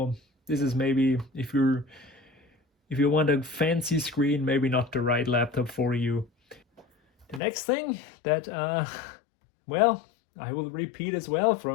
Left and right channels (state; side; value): drops out; right; at 7.4 s